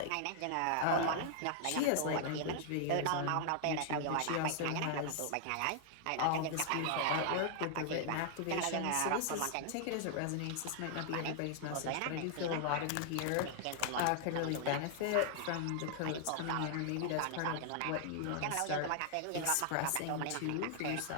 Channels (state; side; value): different; both; correlation 0.00